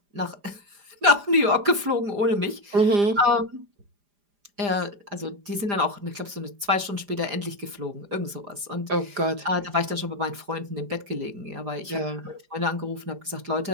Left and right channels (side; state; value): left; late; 4.9 ms